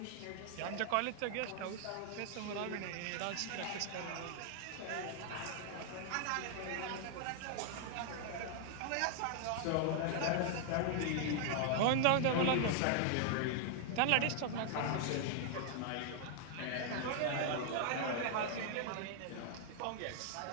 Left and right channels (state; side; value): different; both; correlation 0.00